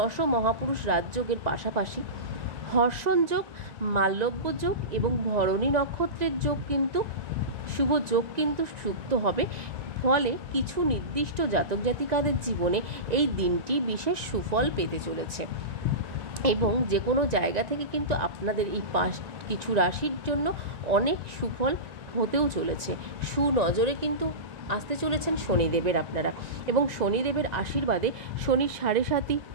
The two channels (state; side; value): late; left; 1.9 ms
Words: মহাপুরুষ রাজযোগের পাশাপাশি হর্ষণ যোগ, মাল্যব্য যোগ এবং ভরণী নক্ষত্রের যোগ কিন্তু শুভ যোগ কিন্তু যুক্ত হবে। ফলে কিছু নির্দিষ্ট জাতক জাতিকাদের জীবনে এই দিনটি বিশেষ সুফল পেতে চলেছে এবং যে কোনো জায়গা থেকে কিন্তু আপনাদের এই কিছু রাশির জন্য অনেক সুফল হতেও চলেছে। সুনজরে কিন্তু আসতে চলেছেন শনিদেবের আপনারা, এবং শনিদেবের আশীর্বাদে শনির 7.5